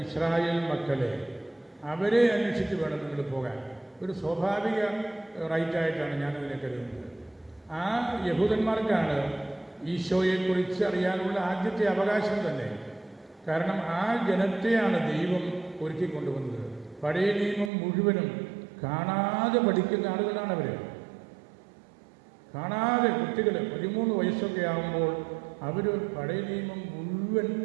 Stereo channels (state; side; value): drops out; left; at 17.7 s